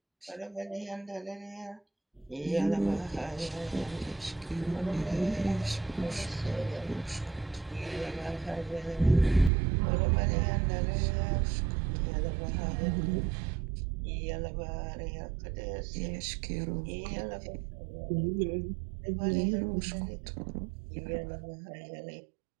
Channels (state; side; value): drops out; left; at 9.5 s